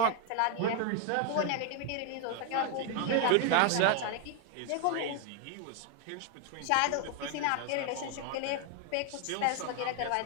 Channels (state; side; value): different; both; correlation 0.01